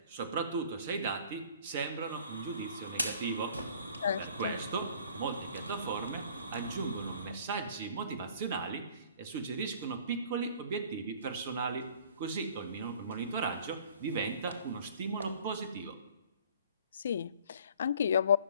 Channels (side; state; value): both; inverted; correlation -0.52